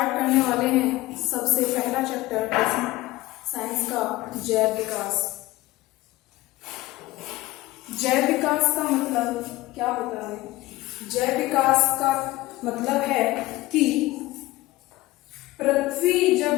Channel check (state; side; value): quieter; right; 18.4 dB